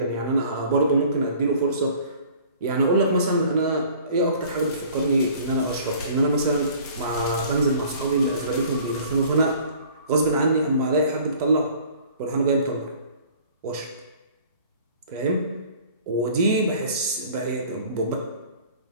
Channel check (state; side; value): inverted; both; correlation -0.51